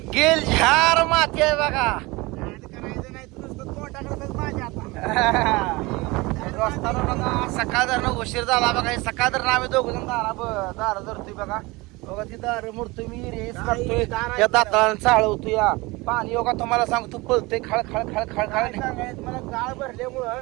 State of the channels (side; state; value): left; quieter; 23.2 dB